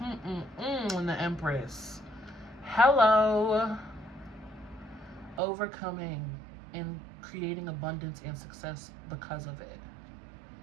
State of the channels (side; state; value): left; drops out; at 5.4 s